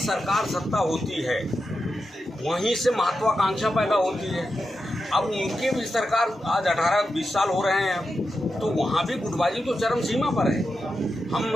सत्ता होती है वहीं से महत्वाकांक्षा पैदा होती है। अब उनके भी सरकार आज 18-20 साल हो रहे हैं, तो वहाँ भी गुटबाजी तो चरम सीमा पर है। हम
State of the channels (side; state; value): both; normal; correlation 0.89